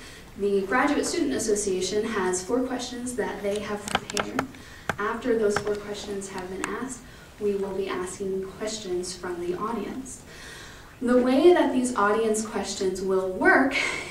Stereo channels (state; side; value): identical; both; correlation 1.00